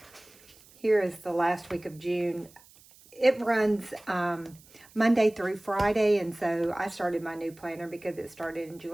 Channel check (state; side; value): noise; right; hiss, 25 dB below the sound